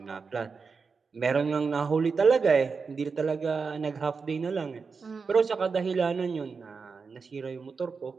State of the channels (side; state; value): left; quieter; 5.0 dB